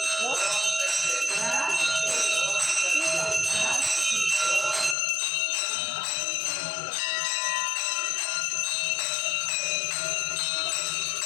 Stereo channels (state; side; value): drops out; right; at 5.0 s